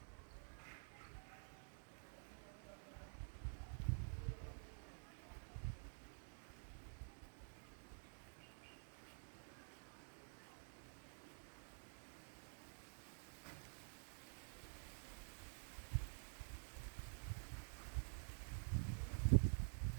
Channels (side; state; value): left; silent; digital silence